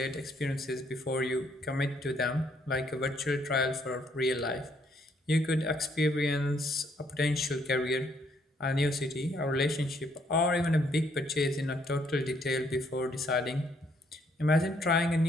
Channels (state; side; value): normal; both; correlation 0.69